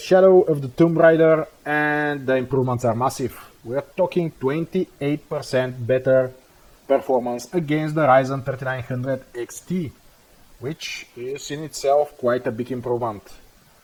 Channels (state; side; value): identical; both; correlation 1.00